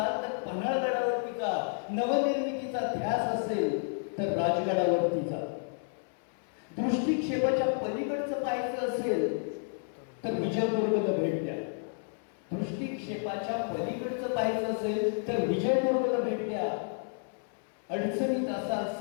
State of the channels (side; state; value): right; silent; 57 dB below the other